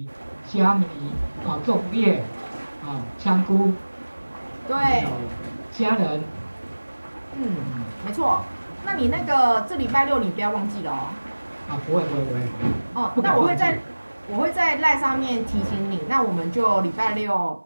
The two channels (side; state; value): both; inverted; correlation -1.00